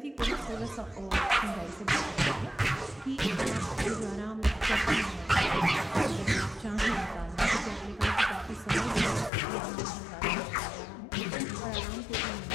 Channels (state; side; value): drops out; right; at 9.3 s